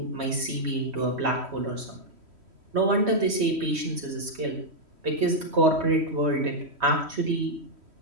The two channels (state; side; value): late; left; 3.1 ms